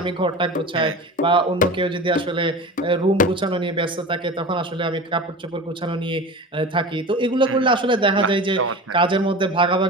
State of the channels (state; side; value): normal; both; correlation 0.32